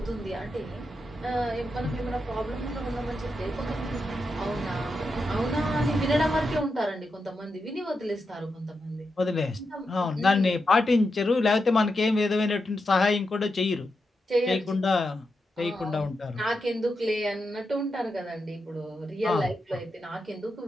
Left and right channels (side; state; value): both; normal; correlation 0.87